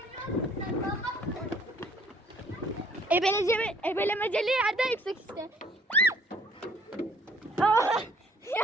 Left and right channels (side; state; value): both; normal; correlation 0.59